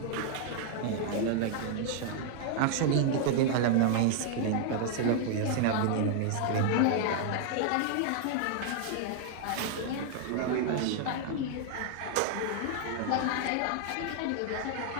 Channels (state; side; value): different; both; correlation 0.00